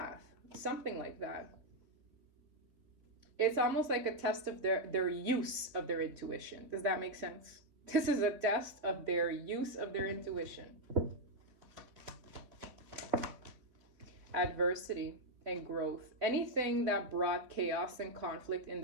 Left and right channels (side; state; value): left; late; 3.6 ms